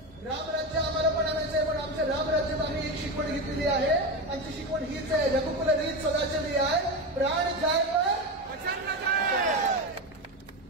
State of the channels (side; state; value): both; normal; correlation 0.18